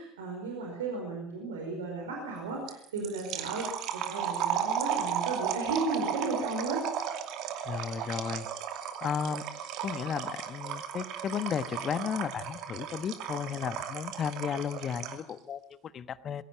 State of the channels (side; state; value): both; normal; correlation 0.40